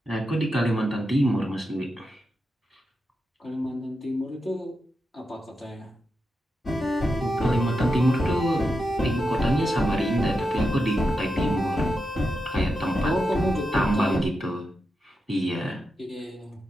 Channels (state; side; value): normal; both; correlation 0.87